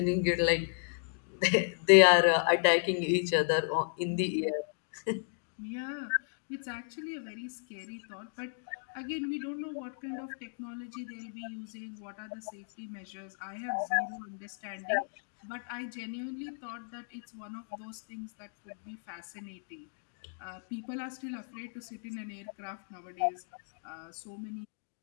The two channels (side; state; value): right; silent; digital silence